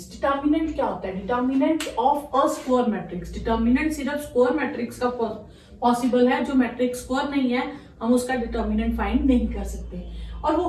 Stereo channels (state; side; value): identical; both; correlation 1.00